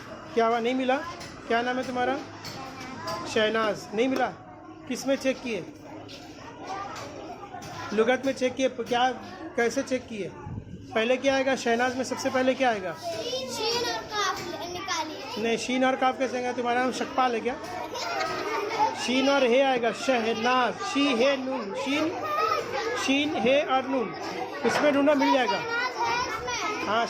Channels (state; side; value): identical; both; correlation 1.00